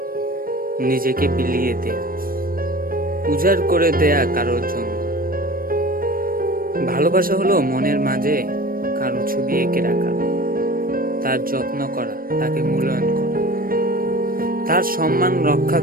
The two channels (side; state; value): left; late; 0.41 ms